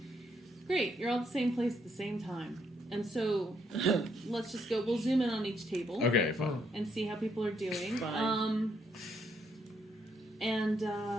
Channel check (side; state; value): both; normal; correlation 0.74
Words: Great. You're all at the same place at the same time. And so, let's just go. We'll zoom in on each table. Okay, fine. And see how people are doing. Fine.